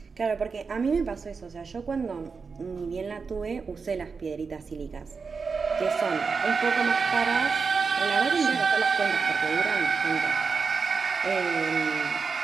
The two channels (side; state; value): left; quieter; 5.0 dB